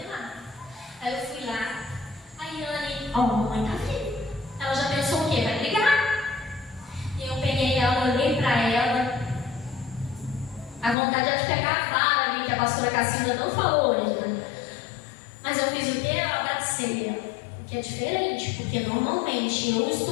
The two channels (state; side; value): drops out; right; at 11.0 s